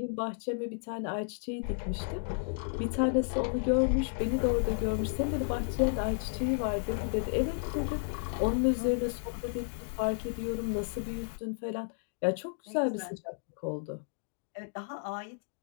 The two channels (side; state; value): right; silent; digital silence